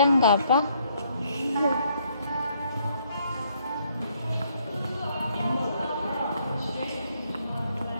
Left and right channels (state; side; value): inverted; both; correlation -0.69